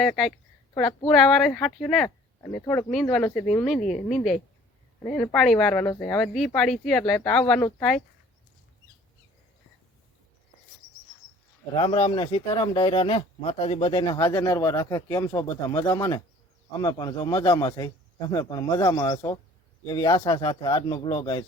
કાંઈક થોડાક પૂરા વારે હાઠ્યું ને અને થોડુંક નીંદવાનું છે હું નીંદે અને એને પાણી વારવાનું છે. હવે દી પાડી છે એટલે તો આવવાનું જ થાય. રામ રામ ને સીતારામ ડાયરા ને માતાજી બધાને હાજર નરવા રાખે. કેમ છો બધા? મજામાં ને? અમે પણ જો મજામાં છે, તમે પણ મજામાં હશો એવી આશા સાથે આજનો બ્લોગ અહીં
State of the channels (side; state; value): both; normal; correlation 0.51